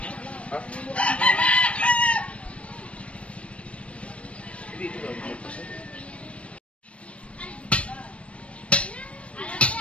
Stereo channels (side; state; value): right; late; 0.062 ms